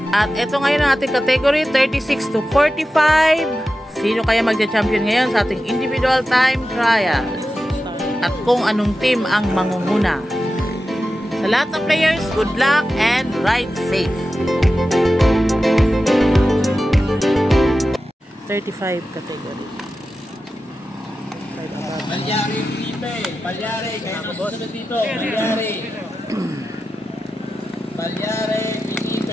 At ito ngayon ang ating category 36 to 45. Sino kaya magja-champion ngayon sa ating individual time trial? At kung anong team ang mangunguna? Sa lahat ng players, good luck and ride safe. 35 category. Palyari, Felipe. Palyari, kayo na susunod dito. Palyari. Palyari,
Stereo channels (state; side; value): normal; both; correlation 0.93